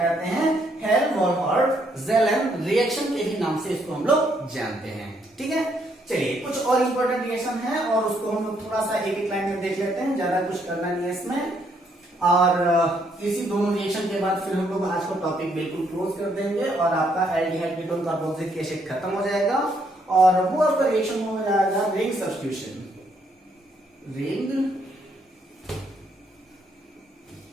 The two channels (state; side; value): normal; both; correlation 0.72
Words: हैं, हेल-वॉलहार्ड-जेलन रिएक्शन के ही नाम से इसको हम लोग जानते हैं। ठीक है, चलिए कुछ और इंपॉर्टेंट रिएक्शन है और उसको हम लोग थोड़ा सा एक एक लाइन में देख लेते हैं, ज्यादा कुछ करना नहीं है इसमें, और इसी दोनों रिएक्शन के बाद फिर हम लोग आज का टॉपिक बिल्कुल क्लोज कर देंगे और आपका एल्डिहाइड कीटोन कार्बोक्सिलिक एसिड खत्म हो जाएगा, और वो आपका रिएक्शन हो जाएगा रिंग सब्स्टिट्यूशन।